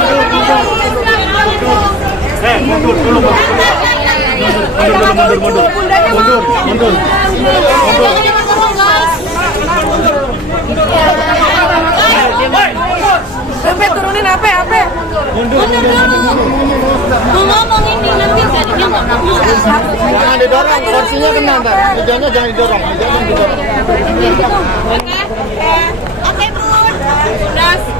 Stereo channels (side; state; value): both; normal; correlation 0.37